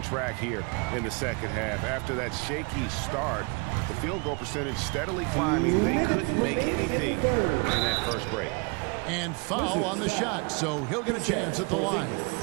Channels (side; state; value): left; quieter; 31.3 dB